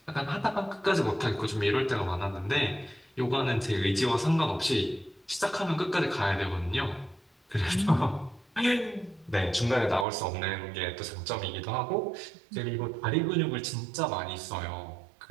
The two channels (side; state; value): left; drops out; at 10.1 s